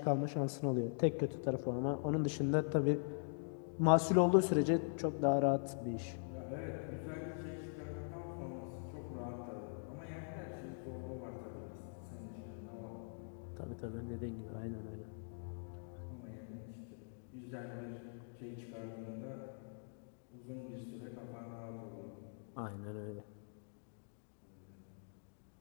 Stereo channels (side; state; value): right; silent; digital silence